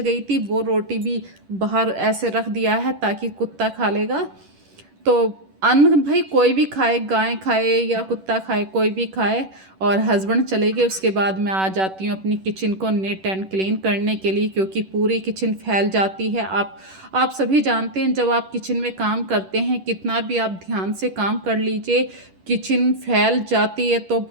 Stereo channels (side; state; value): left; late; 10 ms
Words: थी वो रोटी भी बाहर ऐसे रख दिया है ताकि कुत्ता खा लेगा। तो अन्न भाई कोई भी खाए, गाय खाए या कुत्ता खाए, कोई भी खाए। और हस्बैंड चले गए उसके बाद मैं आ जाती हूँ अपनी किचन को नीट एंड क्लीन करने के लिए, क्योंकि पूरी किचन फैल जाती है। आप सभी जानते हैं जब आप किचन में काम करते हैं, कितना भी आप ध्यान से काम कर लीजिए, किचन फैल जाती है तो